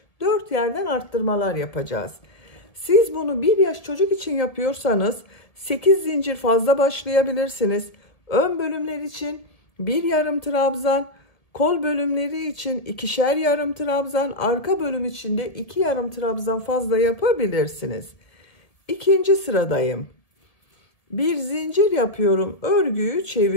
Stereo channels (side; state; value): right; late; 1.7 ms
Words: 4 yerden arttırmalar yapacağız. Siz bunu 1 yaş çocuk için yapıyorsanız 8 zincir fazla başlayabilirsiniz. Ön bölümler için 1 yarım trabzan, kol bölümleri için 2'şer yarım trabzan, arka bölüm için de 2 yarım trabzan fazla yapabilirsiniz. İkinci sıradayım. Bir zincir yapıyorum, örgüyü